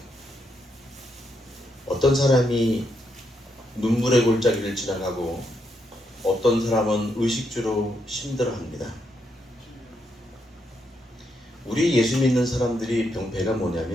어떤 사람이 눈물의 골짜기를 지나가고 어떤 사람은 의식주로 힘들어합니다. 우리 예수 믿는 사람들이 병폐가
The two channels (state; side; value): normal; both; correlation 0.79